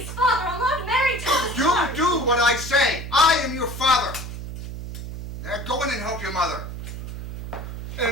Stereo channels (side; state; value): right; noise; hum, 8 dB below the sound